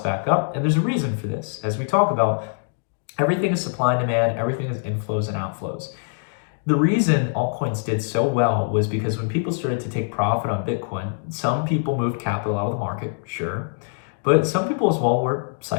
back up. And there's a reason for this. As we talk about, everything is supply and demand, everything is inflows and outflows. The reason altcoins did so well was because when people started to take profit on Bitcoin, some people moved capital out of the market, sure, but some people as well were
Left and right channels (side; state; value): right; silent; digital silence